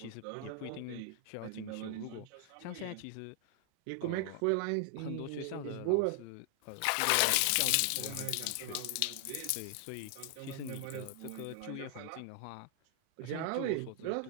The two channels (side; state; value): both; different; correlation 0.00